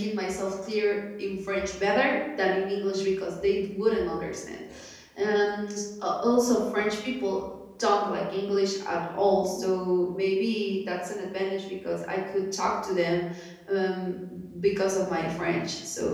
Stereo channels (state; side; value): identical; both; correlation 1.00